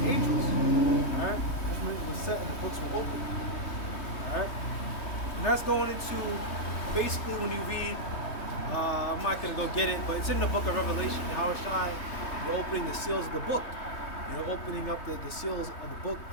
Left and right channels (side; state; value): right; late; 3.3 ms